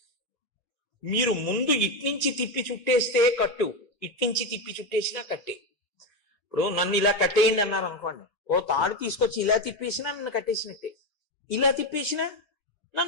మీరు ముందు ఇట్నుంచి తిప్పి చుట్టేస్తే కట్టు, ఇట్నుంచి తిప్పి చుట్టేసినా కట్టే. ఇప్పుడు నన్ను ఇలా కట్టేయండి అన్నారు అనుకోండి, ఓ తాడు తీసుకొచ్చి ఇలా తిప్పేసినా నన్ను కట్టేసినట్టే, ఇలా తిప్పేసినా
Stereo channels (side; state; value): both; normal; correlation 0.12